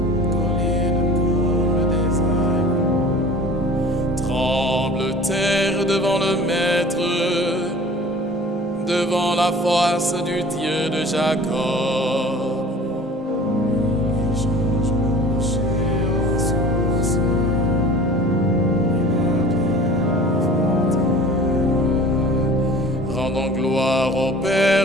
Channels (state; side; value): normal; both; correlation 0.43